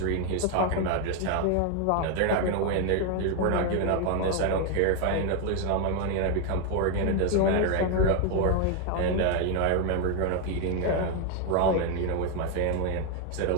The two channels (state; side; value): different; both; correlation 0.01